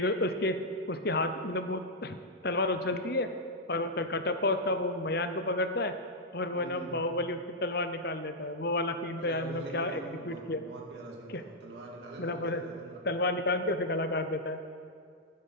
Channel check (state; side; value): normal; both; correlation -0.06